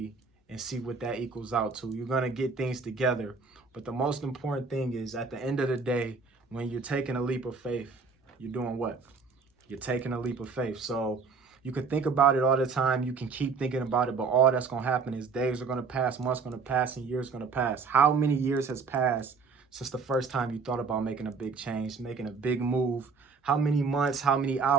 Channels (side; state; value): left; quieter; 4.8 dB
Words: and see what that equals out to. You're going to get things together. But the most important thing is at the end of the day, when you're taking a leap of faith, you're doing what? You're taking a leap of faith. So you can think about it all the time. You can keep thinking about it, but all that's going to happen is days are going to pass, months going to pass, and years going to pass. How many years has passed since the first time you thought about making a big change, making a big move? How many months, how many